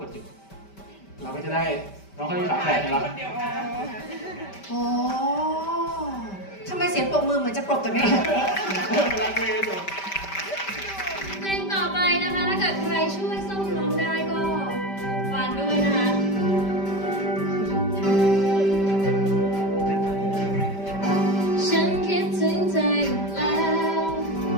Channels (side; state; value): right; late; 5.1 ms